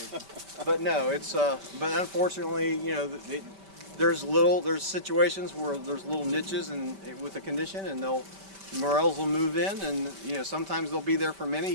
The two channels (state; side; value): late; left; 5.1 ms